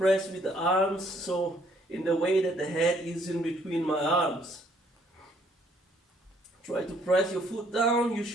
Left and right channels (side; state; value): both; normal; correlation 0.65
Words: with the arms, so in the way that the head is in between my arms. Try to press your foot down. You